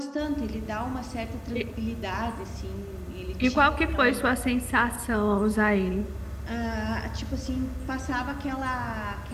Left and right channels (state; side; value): identical; both; correlation 1.00